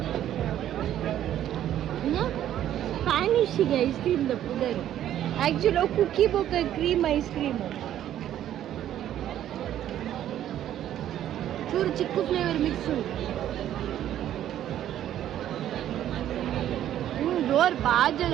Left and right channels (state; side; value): quieter; left; 11.6 dB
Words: Spanish ice cream द पुडर actually cookie बोक cream ice cream चूर chikoo flavour mix door बाजल